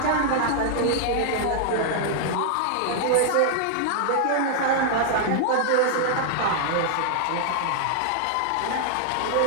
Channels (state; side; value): different; both; correlation -0.01